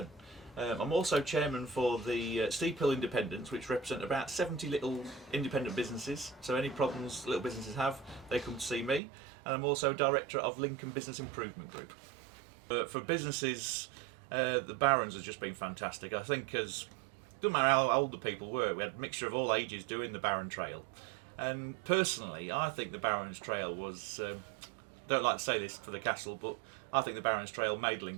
I'm also chairman for the Steep Hill Independents, which represent about 70 little independent businesses. So any problems little businesses have, they come to see me. And I'm also director of Lincoln Business Improvement Group. For businesses, the Barons has just been fantastic. I think doesn't matter how old the people were, we had a mixture of all ages doing the Baron Trail. And personally, I think the Barons Trail was, don't like to say this for the castle, but I think the Barons Trail made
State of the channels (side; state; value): left; drops out; at 9.0 s